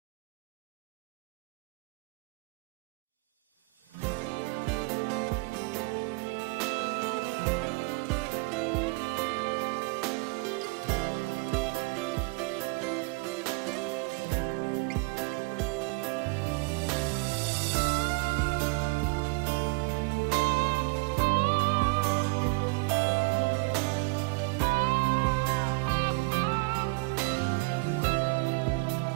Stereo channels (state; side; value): quieter; left; 29.5 dB